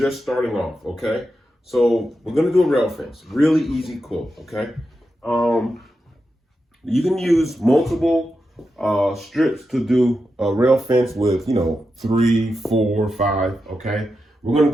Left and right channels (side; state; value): both; normal; correlation 0.88